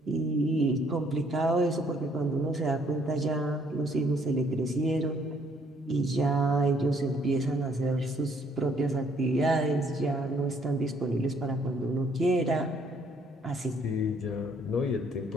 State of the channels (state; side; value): normal; both; correlation 0.65